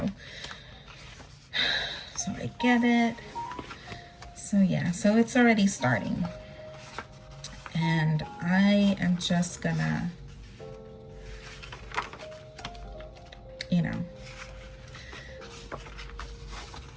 I get it. So yeah, so it's already starting, and I am just gonna, you know,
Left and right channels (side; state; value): both; identical; correlation 1.00